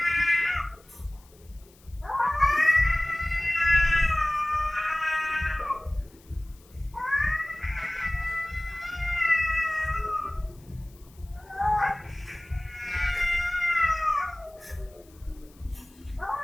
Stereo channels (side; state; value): left; noise; hiss, 28 dB below the sound